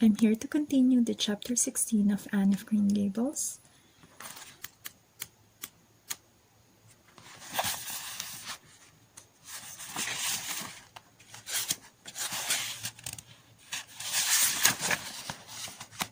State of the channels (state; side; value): identical; both; correlation 1.00